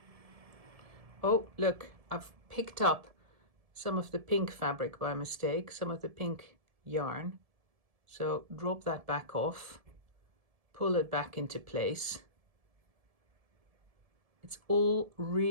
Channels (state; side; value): late; left; 1.7 ms